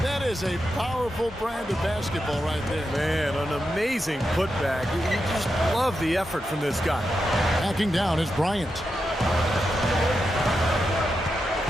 That is a powerful brand of basketball right there. Man, an amazing putback. You just love the effort from this guy. Backing down is Bryant.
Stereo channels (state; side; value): normal; both; correlation 0.87